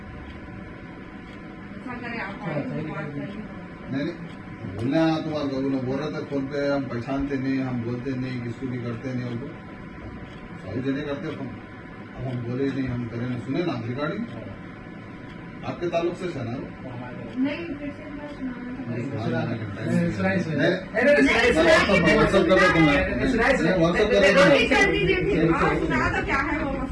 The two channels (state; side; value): identical; both; correlation 1.00